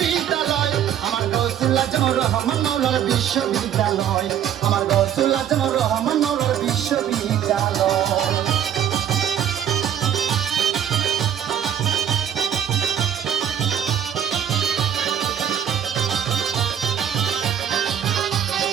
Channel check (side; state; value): left; quieter; 9.6 dB